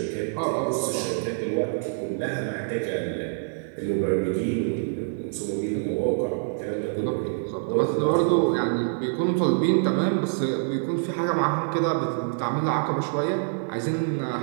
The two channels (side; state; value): left; silent; 61 dB below the other